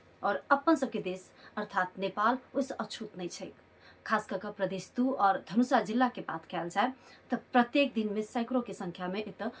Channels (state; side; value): identical; both; correlation 1.00